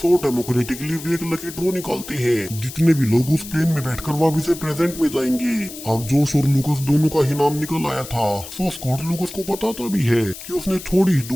डेमोक्रेटिकली वे एक लकी ड्रॉ निकालते हैं, जितने भी लोग उस प्लेन में बैठकर वापस से प्रेजेंट में जाएंगे। अब जोश और लूकस दोनों का ही नाम निकल आया था। सो स्कॉट लूकस को बताता भी है कि उसने थोड़ी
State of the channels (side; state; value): left; noise; hiss, 13 dB below the sound